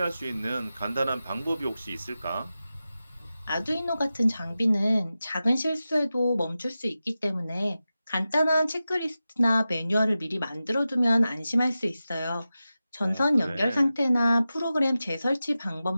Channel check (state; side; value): inverted; both; correlation -0.93